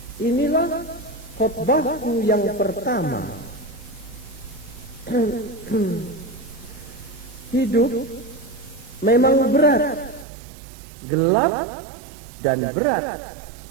Inilah khotbahku yang pertama. Hidup memang berat, gelap dan berat.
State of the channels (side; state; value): left; drops out; at 10.2 s